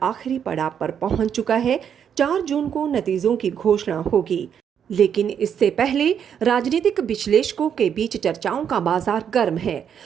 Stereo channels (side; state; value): left; quieter; 8.2 dB